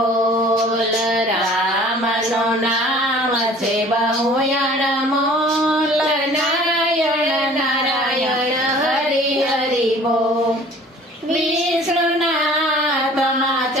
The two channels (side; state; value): both; normal; correlation 0.49